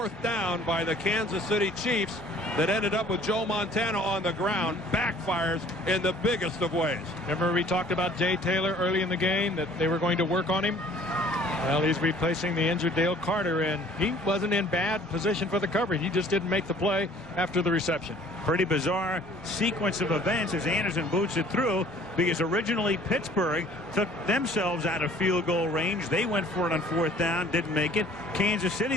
down by the Kansas City Chiefs that ended up with Joe Montana on the ground backfires in the biggest of ways. Remember we talked about Jay Taylor early in the game, that they were going to work on him? Well, he's replacing the injured Dale Carter, and he wasn't in bad position for the coverage. He just didn't make the play after the reception. Pretty bizarre sequence of events as Anderson boots it through, because originally Pittsburgh took themselves out of field goal range. They went for it on 4th down, didn't make it. Kansas City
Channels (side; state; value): both; normal; correlation 0.53